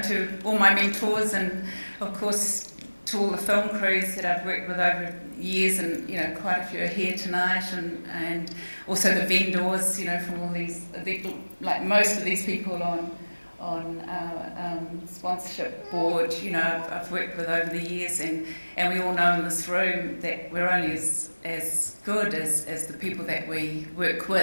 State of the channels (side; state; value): both; inverted; correlation -1.00